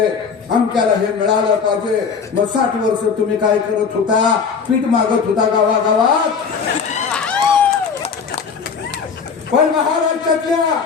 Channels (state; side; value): quieter; right; 5.9 dB